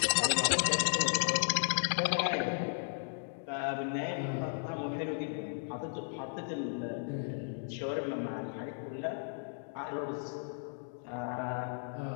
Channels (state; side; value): silent; right; digital silence